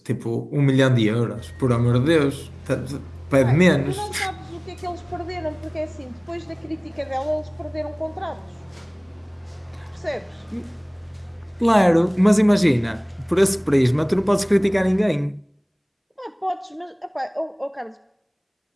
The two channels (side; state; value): both; identical; correlation 1.00